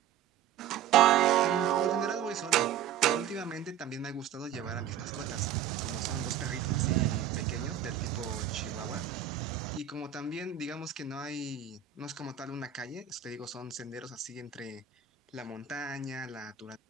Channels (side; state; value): left; quieter; 9.6 dB